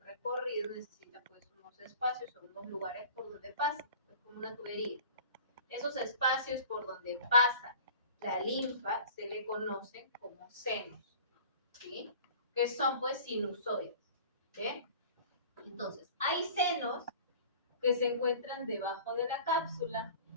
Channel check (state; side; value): inverted; both; correlation -0.44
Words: recorrido, necesita pues unos espacios o unos lugares por donde pase, es como una tubería. Esos espacios por donde pasa la linfa se le conocen como senos, ¿sí? Que son pues sinusoides, ¿sí? Entonces, hay senos que se encuentran debajo de la cápsula,